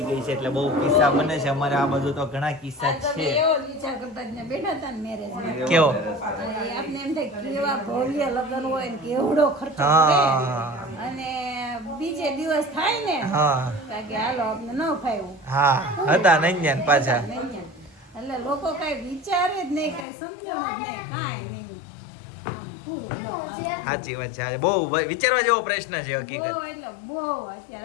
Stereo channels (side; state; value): right; drops out; at 20.1 s